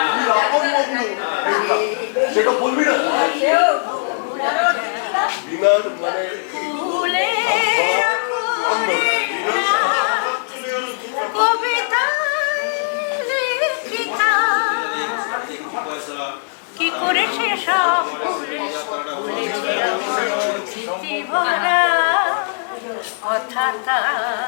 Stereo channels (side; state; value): right; silent; digital silence